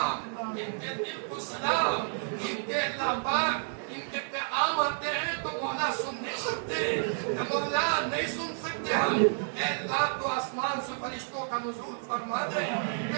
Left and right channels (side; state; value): left; silent; 57 dB below the other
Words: ان کے دل کو سلام، ان کے اللہ پاک ان کے پیغام آتے ہیں تو مولا سن نہیں سکتے، مولا نہیں سن سکتے ہم، اے اللہ تو آسمان سے فرشتوں کا نزول فرما دے،